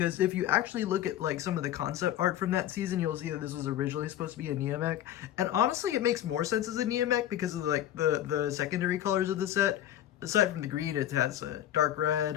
if you actually look at like some of the concept art from that season, you'll see that this was originally supposed to be a Nia mech, and honestly it makes more sense as a Nia mech because of like the secondary colors of the set. Aside from the green, it has a dark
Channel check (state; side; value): quieter; right; 12.0 dB